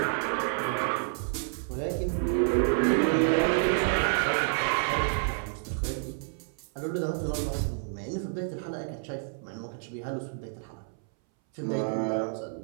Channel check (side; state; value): left; silent; 58 dB below the other